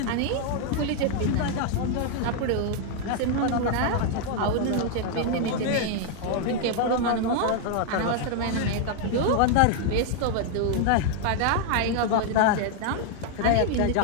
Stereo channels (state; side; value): different; both; correlation 0.00